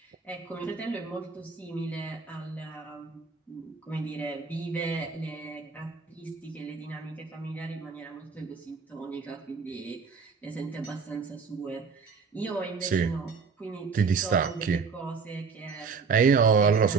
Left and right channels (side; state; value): left; quieter; 5.2 dB